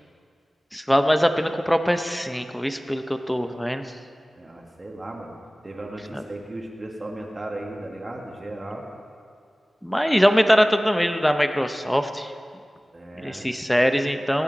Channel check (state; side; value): normal; both; correlation 0.98